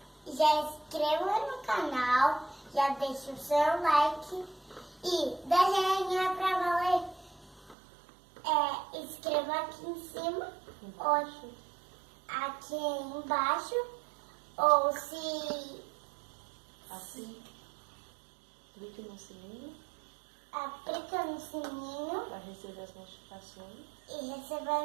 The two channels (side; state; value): left; drops out; at 7.8 s